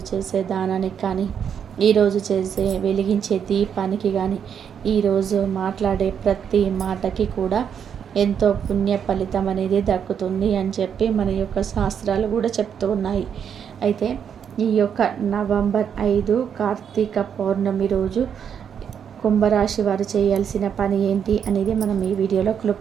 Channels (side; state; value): left; quieter; 7.9 dB